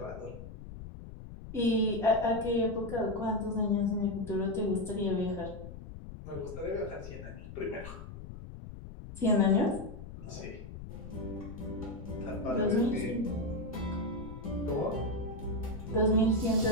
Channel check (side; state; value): left; noise; rumble, 12 dB below the sound